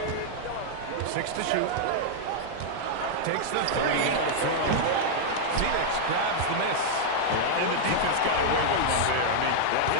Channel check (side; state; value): both; different; correlation -0.01